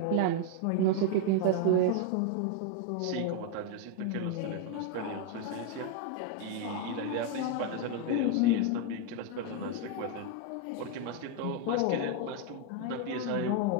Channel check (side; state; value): both; different; correlation 0.01